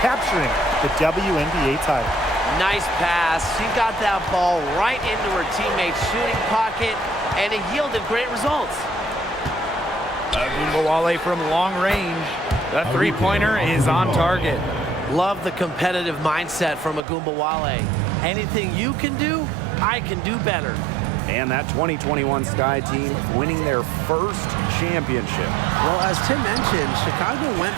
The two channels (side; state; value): left; drops out; at 17.0 s